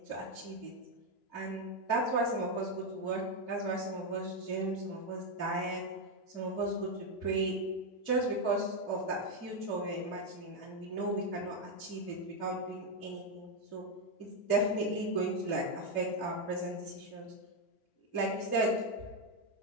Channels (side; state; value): right; late; 2.6 ms